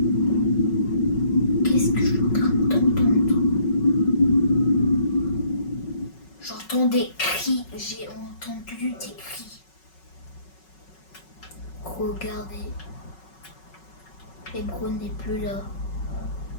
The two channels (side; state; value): right; late; 5.4 ms